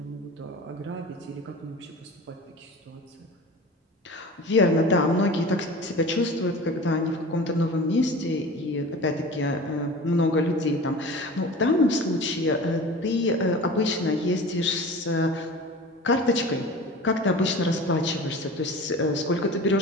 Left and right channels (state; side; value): normal; both; correlation 0.37